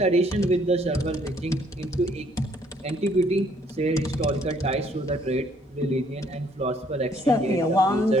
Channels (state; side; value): normal; both; correlation 0.65